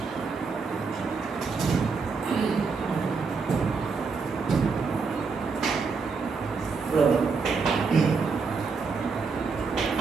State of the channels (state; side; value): quieter; left; 4.9 dB